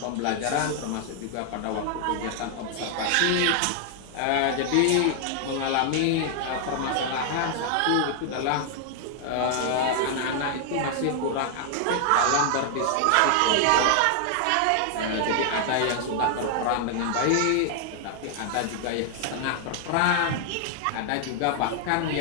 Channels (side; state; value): both; different; correlation 0.00